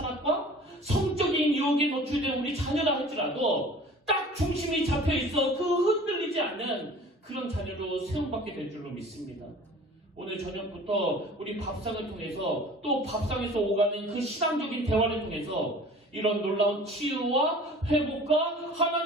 성적인 유혹에 노출된 우리 자녀라 할지라도 딱 중심이 잡혀있어 그 흔들리지 않는 그런 자녀로 세움받게 될 줄로 믿습니다. 오늘 저녁부터 우리 밥상을 통해서 또 밥상에서 오가는 그 신앙적인 대화를 통해서 이런 놀라운 치유와 회복과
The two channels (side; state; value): both; normal; correlation 0.45